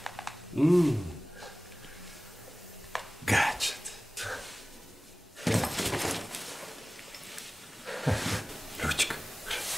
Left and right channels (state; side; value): normal; both; correlation 0.98